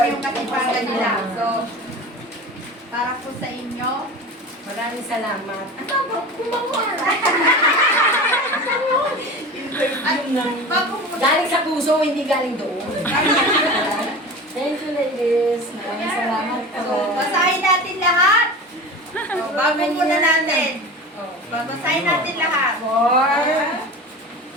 yung katipangan nila. So, para po sa inyo, Maraming salamat. Galing sa puso, hindi galing doon. Thank you, ladies. Maraming salamat po. So, basahin natin lahat. So, bago muna natin. Basahin natin lahat.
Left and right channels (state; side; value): normal; both; correlation 0.33